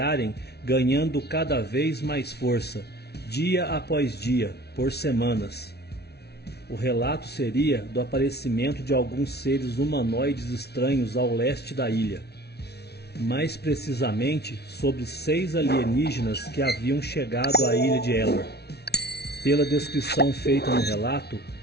ganhando cada vez mais força, dia após dia, por semanas. O relato seria do aparecimento de alguns seres humanoides estranhos ao leste da ilha. Mais precisamente, sobre 6 alienígenas que haviam chegado à ilha de Elor. Pela descrição feita no relato,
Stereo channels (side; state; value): right; late; 0.48 ms